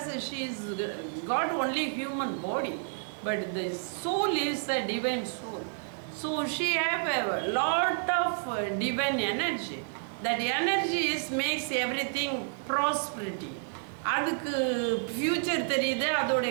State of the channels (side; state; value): left; silent; digital silence